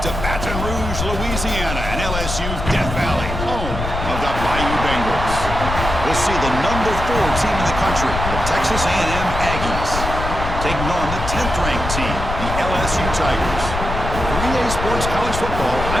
to Baton Rouge, Louisiana, and LSU's Death Valley, home of the Bayou Bengals. We'll see the number 4 team in the country, the Texas A&M Aggies, taking on the 10th-ranked team, the LSU Tigers. For EA Sports College Football,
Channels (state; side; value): noise; left; rumble, 5 dB below the sound